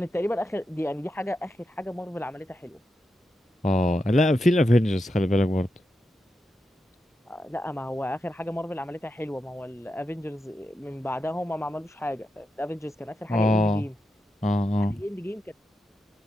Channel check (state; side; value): normal; both; correlation 0.87